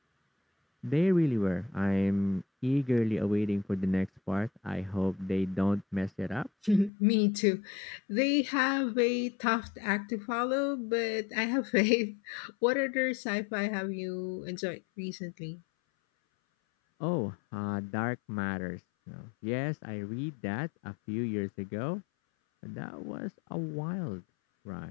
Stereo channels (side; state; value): right; drops out; at 6.9 s